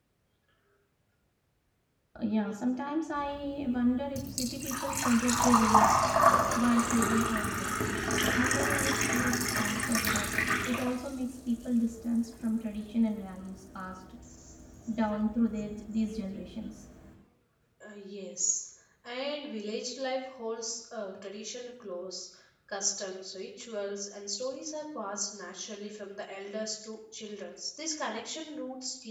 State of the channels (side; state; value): both; identical; correlation 1.00